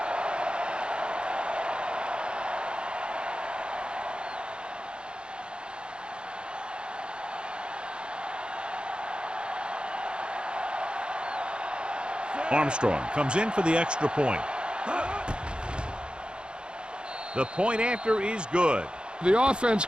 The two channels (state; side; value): late; left; 0.053 ms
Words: Armstrong comes in for the extra point. The point after is good. The offense